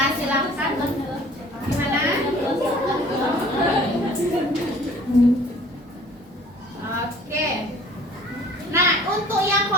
silahkan. Gimana? Oke. Nah, untuk yang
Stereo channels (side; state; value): both; normal; correlation 0.51